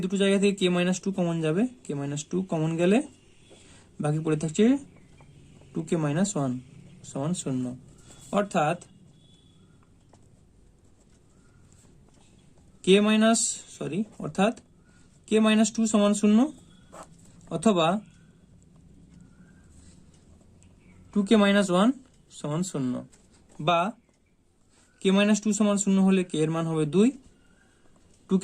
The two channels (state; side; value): identical; both; correlation 1.00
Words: দুটো জায়গা থেকে k মাইনাস 2 কমন যাবে, k মাইনাস 2 কমন গেলে বাকি পড়ে থাকছে 2k মাইনাস 1 সমান 0। অর্থাৎ k মাইনাস 2 সমান 0, অথবা 2k মাইনাস 1 সমান 0। বা k মাইনাস 2 সমান 0 হলে k এর মান হবে 2, 2k